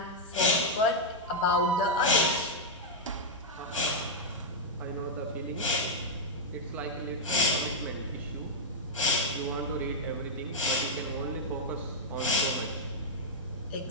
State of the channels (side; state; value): both; normal; correlation -0.03